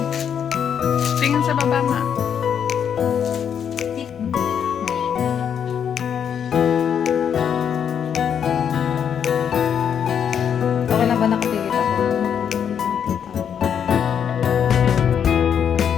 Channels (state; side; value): quieter; right; 8.2 dB